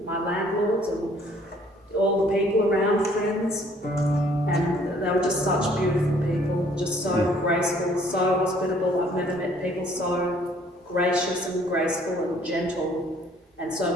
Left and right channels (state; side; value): normal; both; correlation 0.60